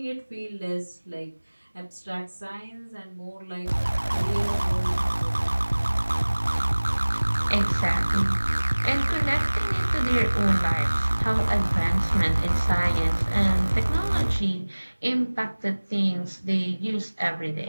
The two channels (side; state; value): both; inverted; correlation -1.00